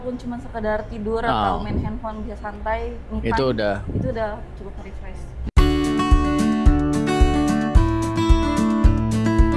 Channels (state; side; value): identical; both; correlation 1.00